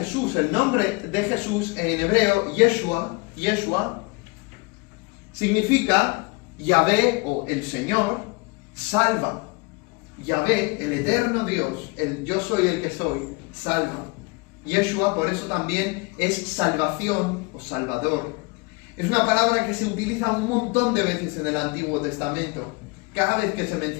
el nombre de Jesús en hebreo, Yeshua, significa Yahvé o el Señor, salva? Yahvé, el eterno Dios, el yo soy el que soy, salva. Yeshua, por eso también es salvación o salvador. Es una palabra que se utiliza un montón de veces en el Antiguo Testamento. Cada vez que se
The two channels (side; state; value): right; quieter; 26.8 dB